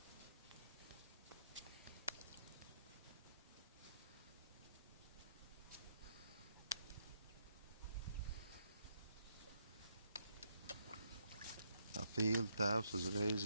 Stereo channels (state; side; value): inverted; both; correlation -0.76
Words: Pīļu tēvs uzreiz